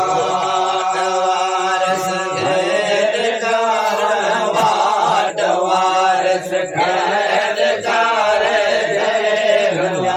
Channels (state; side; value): identical; both; correlation 1.00